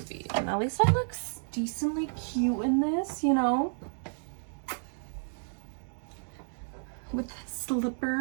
and at least I look decently cute in this, you know, with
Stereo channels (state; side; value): silent; left; digital silence